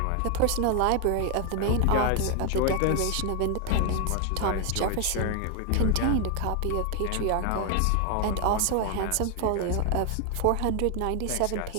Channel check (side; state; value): both; different; correlation 0.00